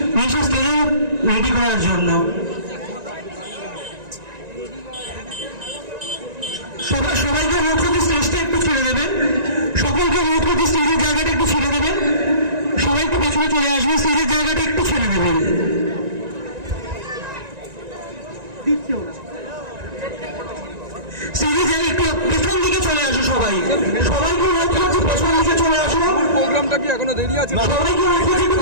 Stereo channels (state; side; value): late; left; 1.9 ms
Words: নিয়ে এসে স্টেজে রেডি করার জন্য। সবাইকে অনুরোধ করতে স্টেজটা একটু ছেড়ে দেবেন, সকলকে অনুরোধ করতে স্টেজের জায়গাটা একটু ছেড়ে দেবেন, সবাই একটু পেছনে চলে আসবে, স্টেজের জায়গাটা একটু ছেড়ে দেবেন। স্টেজের জায়গা একটু পেছন দিকে চলে আসো, সবাইকে অনুরোধ করছি পেছন দিকে চলে আসো। প্রোগ্রামটা কি এখনো দেরি আছে? সবাইকে অনুরোধ করছি একটু